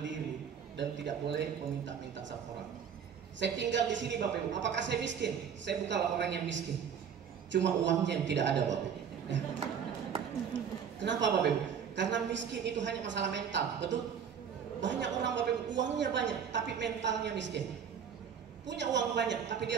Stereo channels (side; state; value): left; quieter; 7.6 dB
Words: dan tidak boleh meminta-minta sama orang. Saya tinggal di sini, Bapak Ibu. Apakah saya miskin? Saya bukanlah orang yang miskin. Cuma uangnya yang tidak ada, Bapak Ibu. Ya. Kenapa, Bapak Ibu? Karena miskin itu hanya masalah mental, betul? Banyak orang, Bapak Ibu, uangnya banyak, tapi mentalnya miskin. Punya uang banyak, tapi